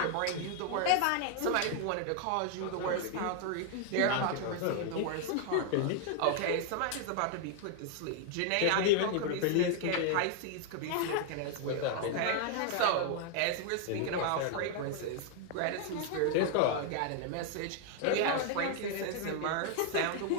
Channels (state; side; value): different; both; correlation 0.00